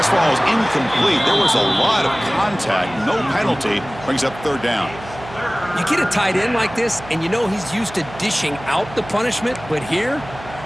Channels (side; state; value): right; noise; hum, 16 dB below the sound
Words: ball is incomplete. There was a lot of contact. No penalty. Brings up third down. You get a tight end like this, and you know he's used to dishing out the punishment, but here,